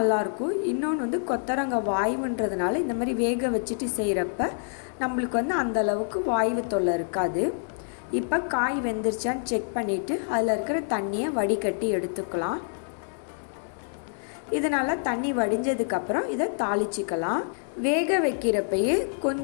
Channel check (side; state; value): right; silent; digital silence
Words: இன்னொன்று வந்து கொத்தவரங்காய் வாய்வுன்றதுனால இந்த மாதிரி வேக வச்சுட்டு செய்கிறப்ப நம்மளுக்கு வந்து அந்தளவுக்கு வாய்வு தொல்லை இருக்காது. இப்போ காய் வெந்துருச்சான்னு செக் பண்ணிவிட்டு அதில் இருக்கிற தண்ணியை வடிகட்டி எடுத்துக்கலாம். இதனால் தண்ணி வடிஞ்சதுக்கப்புறம் இதை தாளிச்சிக்கலாம். வேக வைக்கிறப்பயே